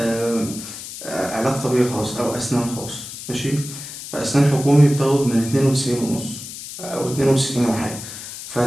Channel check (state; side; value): noise; left; hiss, 11 dB below the sound